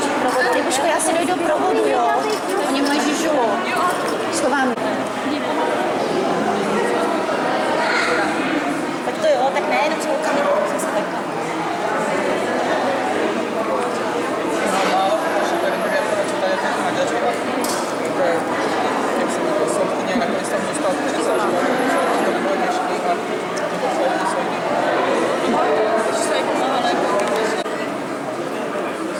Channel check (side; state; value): both; identical; correlation 1.00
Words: provodu. Libuško, já si dojdu provodu, jo. Oni mají žižulu. Schovám. Tak to jo, tak ne, jenom